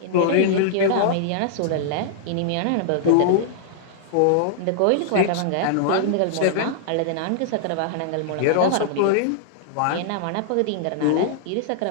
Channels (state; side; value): different; both; correlation -0.01